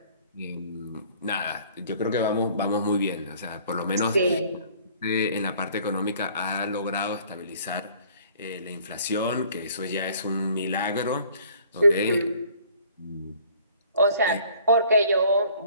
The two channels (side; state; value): both; inverted; correlation -0.55